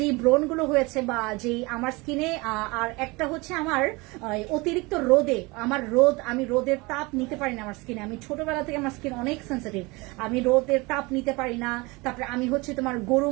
ব্রণ গুলো হয়েছে বা যেই আমার স্কিনে আর একটা হচ্ছে আমার অতিরিক্ত রোদে আমি রোদের তাপ নিতে পারি না আমার স্কিনে। আমি ছোটবেলা থেকে আমার স্কিন অনেক সেন্সিটিভ, আমি রোদের তাপ নিতে পারি না। তারপরে আমি হচ্ছে তোমার গরু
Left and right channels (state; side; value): quieter; left; 24.8 dB